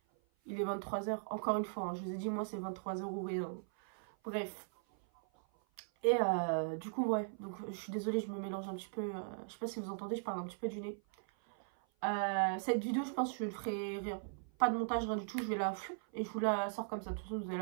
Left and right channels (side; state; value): left; silent; 52 dB below the other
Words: il est 23h. Encore une fois, hein, je vous ai dit, moi, c'est 23h ou rien. Bref. Et du coup, ouais. Donc, je suis désolée, je me mélange un petit peu. Je sais pas si vous entendez, je parle un petit peu du nez. Cette vidéo, je pense que je ne ferai rien. Pas de montage, rien du tout. Je vais la et je vous la sors comme ça. De toute façon, vous avez